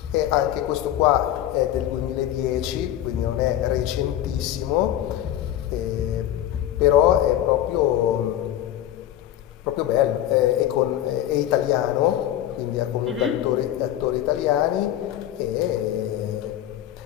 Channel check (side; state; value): right; quieter; 12.2 dB